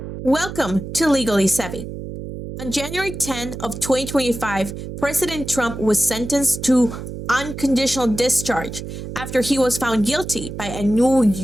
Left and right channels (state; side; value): noise; right; hum, 9 dB below the sound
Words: Welcome to Legally Sevvy. On January 10 of 2025, President Trump was sentenced to unconditional discharge after he was found guilty by a New